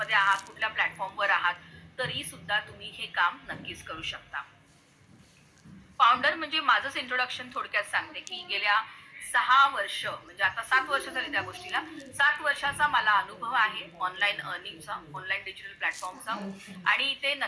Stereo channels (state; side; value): identical; both; correlation 1.00